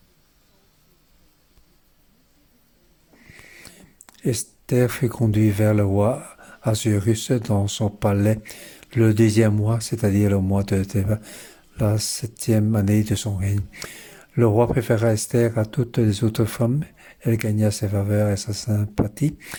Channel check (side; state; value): both; identical; correlation 1.00